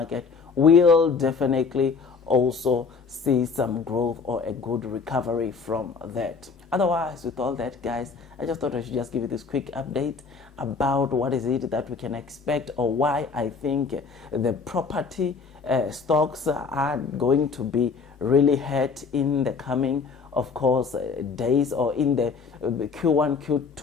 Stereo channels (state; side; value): quieter; right; 5.0 dB